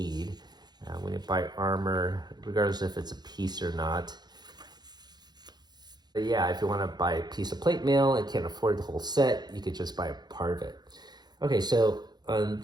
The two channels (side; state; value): left; late; 0.20 ms